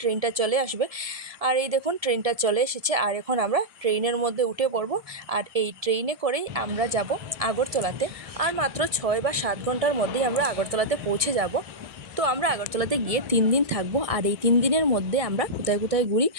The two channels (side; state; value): left; late; 1.7 ms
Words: ট্রেনটা চলে আসবে। আর এই দেখুন ট্রেনটা চলে এসেছে, আর এখন আমরা ট্রেনের মধ্যে উঠে পড়ব। আর এই ট্রেনে করেই আমরা যাব আগরতলাতে, আর মাত্র 6 বা 7 ঘন্টার মধ্যেই আমরা আগরতলাতে পৌঁছে যাব। তো আমরা আগরতলাতে গিয়ে 3 দিন থাকবো, আর এই 3 দিনের মধ্যে আমরা কোথায় কোথায় ঘুরি